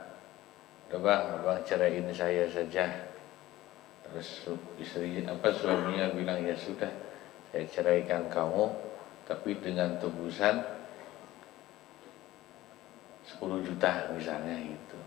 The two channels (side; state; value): right; quieter; 16.3 dB